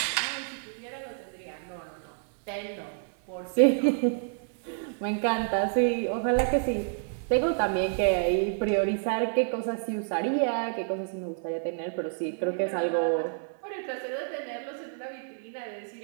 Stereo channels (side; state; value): left; silent; digital silence